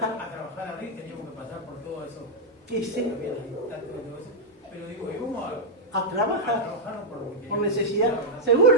A trabajar ahí, teníamos que pasar por todo eso. Sí. Pero digo, íbamos a trabajar por necesidad. Seguro,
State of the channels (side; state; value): both; normal; correlation -0.03